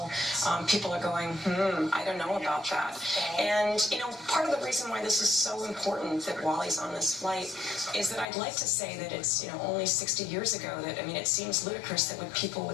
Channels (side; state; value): right; drops out; at 8.2 s